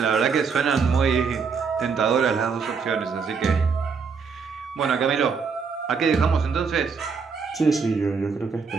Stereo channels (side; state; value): left; quieter; 5.5 dB